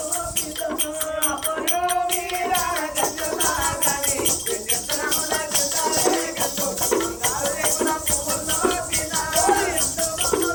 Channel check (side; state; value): both; identical; correlation 1.00